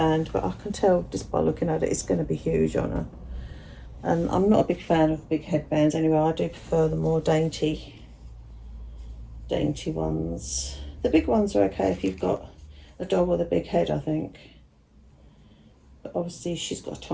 but I can tell just by looking at it, it's going to be huge on her. And I'm not a big fan of big headbands anyway. I do prefer the more dainty ones. The big ones are okay if you've got a dog with a big head, I think. But obviously she's got a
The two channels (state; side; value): identical; both; correlation 1.00